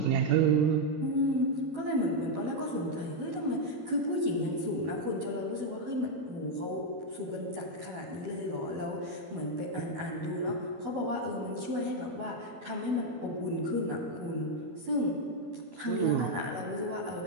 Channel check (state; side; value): late; left; 12 ms